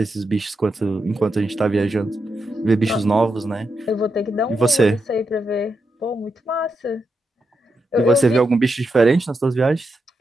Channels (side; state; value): both; normal; correlation 0.85